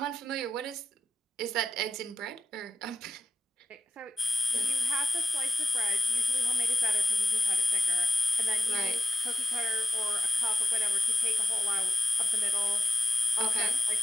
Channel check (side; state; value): both; normal; correlation 0.89